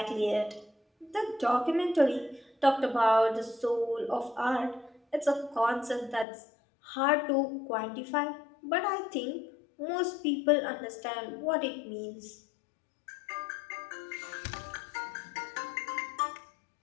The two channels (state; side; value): drops out; right; at 6.2 s